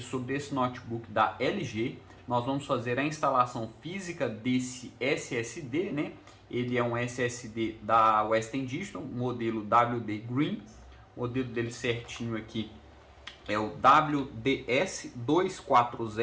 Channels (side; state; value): both; identical; correlation 1.00